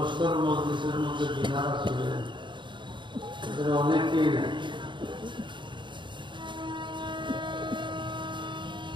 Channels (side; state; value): left; late; 0.23 ms